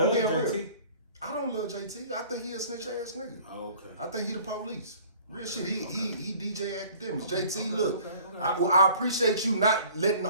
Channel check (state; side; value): inverted; both; correlation -0.50